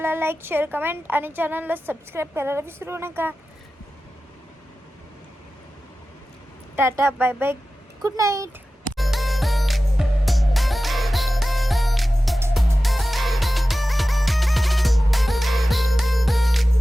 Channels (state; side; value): normal; both; correlation 0.95